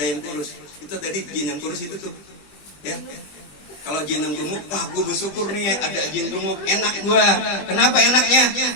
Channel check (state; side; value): late; right; 20 ms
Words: kurus. Itu tadi jin yang kurus itu tuh. Ya. Kalau jin yang gemuk, wah gue bersyukur nih ada jin gemuk, enak gua. Kenapa enaknya?